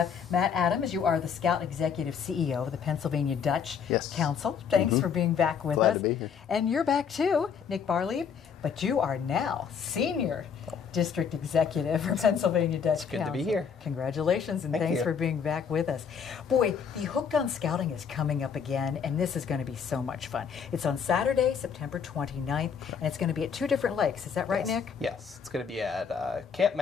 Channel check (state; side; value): quieter; right; 6.9 dB